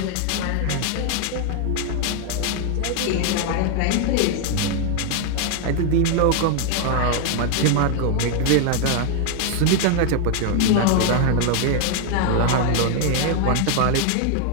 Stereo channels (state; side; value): different; both; correlation 0.00